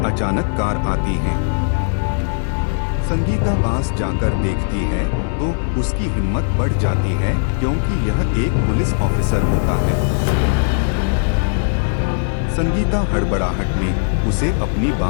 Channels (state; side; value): silent; right; 57 dB below the other